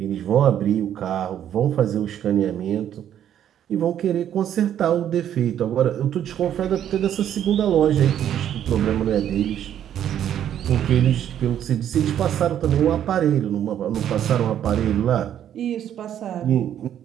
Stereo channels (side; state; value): left; quieter; 10.3 dB